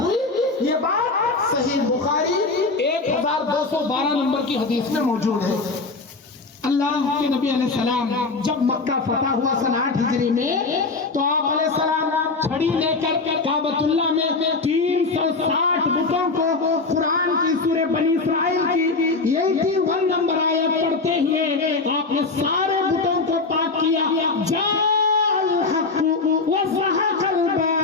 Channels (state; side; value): quieter; right; 3.8 dB